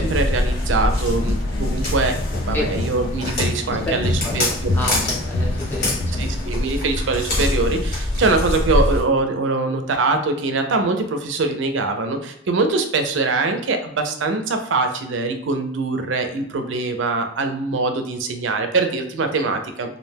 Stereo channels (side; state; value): both; normal; correlation 0.28